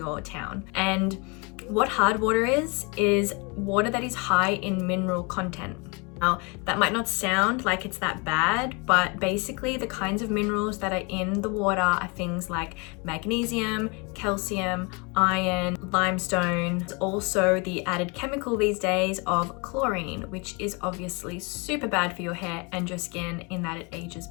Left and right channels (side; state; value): right; quieter; 30.5 dB